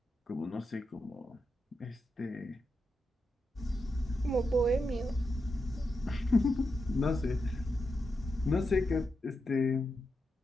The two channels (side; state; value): both; normal; correlation 0.87